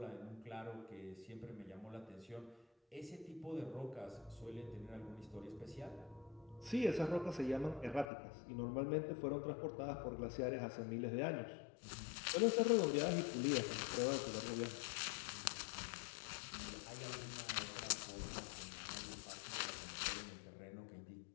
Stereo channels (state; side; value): drops out; right; at 8.1 s